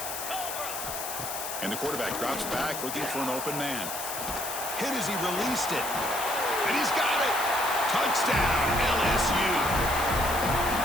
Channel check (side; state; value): left; noise; hiss, 6 dB below the sound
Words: And the quarterback drops back, looking for an open man. Hit as he released it. And he's got it. Touchdown, LSU.